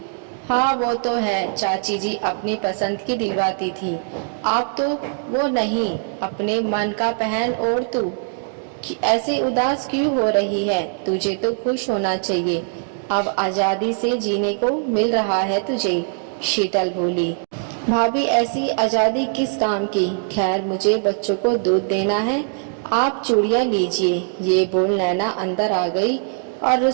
हाँ वो तो है, चाची जी अपनी पसंद की दिलवाती थी, आप तो वो नहीं, अपने मन का पहन। और तू ऐसे उदास क्यों हो रही है? तुझे तो खुश होना चाहिए, अब आजादी से जीने को मिल रहा है तुझे। शीतल बोली, भाभी ऐसी आजादी किस काम की? खैर मुझे बच्चों को दूध देना है, आप चूड़ियां लीजिए। ये बोल नैना अंदर आ गई और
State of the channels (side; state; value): left; silent; 65 dB below the other